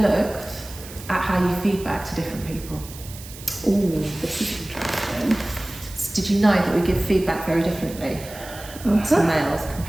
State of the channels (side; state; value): right; noise; hiss, 16 dB below the sound